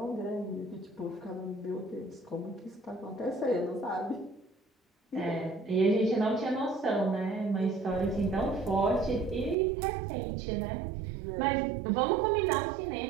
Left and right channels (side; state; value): left; drops out; at 9.6 s